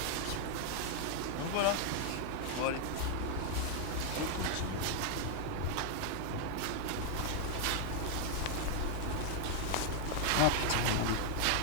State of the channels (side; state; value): both; different; correlation 0.00